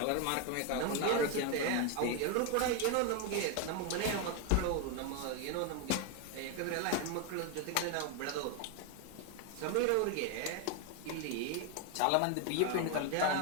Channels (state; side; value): different; both; correlation 0.01